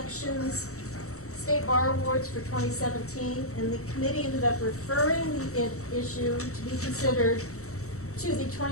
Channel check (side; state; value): right; late; 0.64 ms